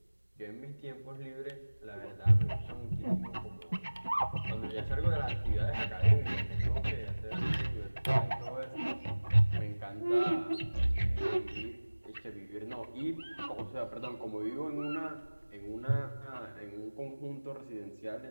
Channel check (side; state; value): both; inverted; correlation -1.00